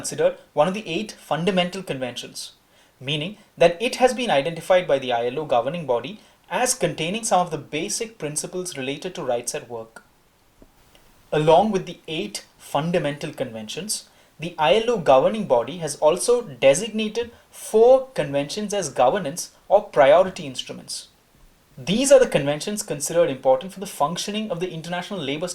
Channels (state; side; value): identical; both; correlation 1.00